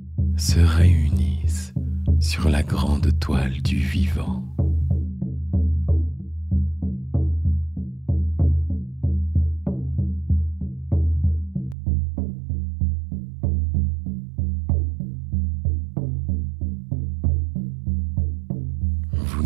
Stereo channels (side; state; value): left; drops out; at 11.8 s